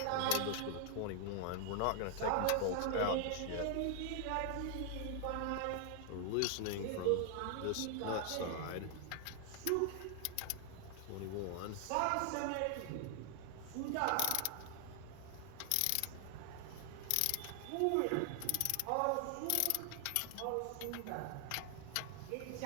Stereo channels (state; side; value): different; both; correlation 0.00